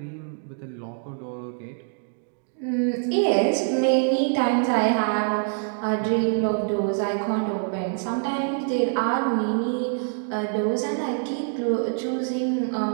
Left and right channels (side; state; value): left; silent; 60 dB below the other